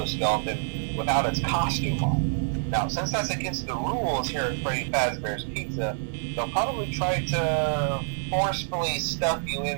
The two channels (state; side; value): silent; left; 60 dB below the other